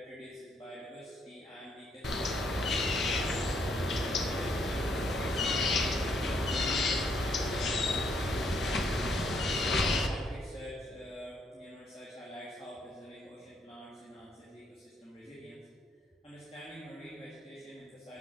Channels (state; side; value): normal; both; correlation 0.71